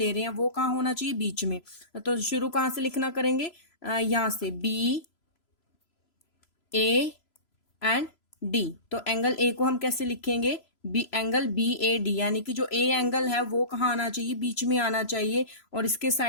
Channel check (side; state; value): right; late; 3.0 ms